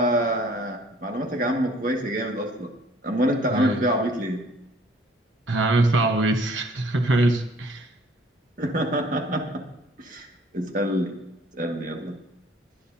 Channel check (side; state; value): both; normal; correlation 0.56